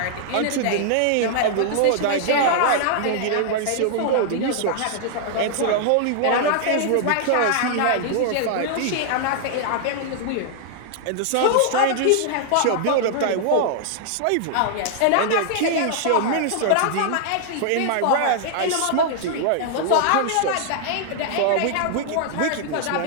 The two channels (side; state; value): both; different; correlation -0.01